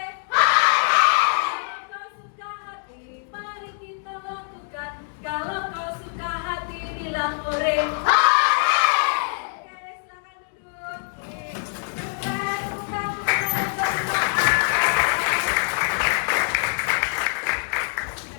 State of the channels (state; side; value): silent; right; digital silence